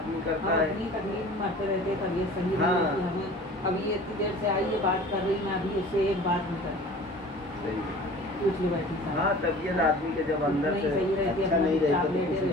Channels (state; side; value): normal; both; correlation 0.43